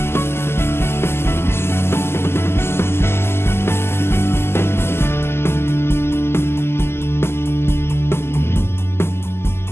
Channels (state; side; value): late; right; 0.12 ms